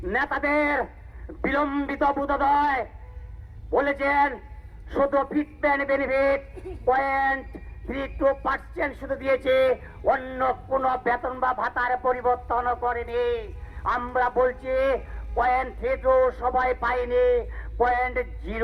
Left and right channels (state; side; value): identical; both; correlation 1.00